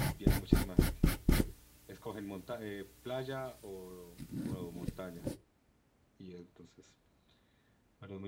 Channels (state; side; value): identical; both; correlation 1.00